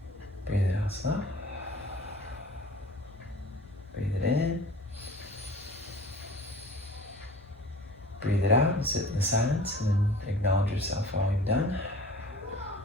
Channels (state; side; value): normal; both; correlation 0.44